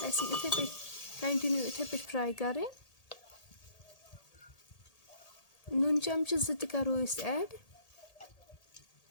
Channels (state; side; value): late; right; 1.8 ms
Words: اَسہِ یِم یِتھَے پٲٹھۍ کَنٹِنیوٗ یِتھَے پٲٹھۍ فرٛاے کَرٕنۍ. نُن چَمچہٕ 2 تہِ کَرو أسۍ ایڈ.